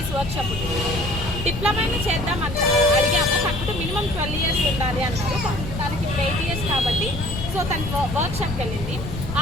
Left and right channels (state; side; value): noise; left; rumble, 7 dB below the sound